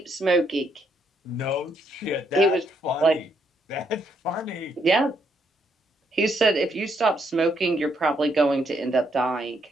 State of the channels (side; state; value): both; normal; correlation 0.74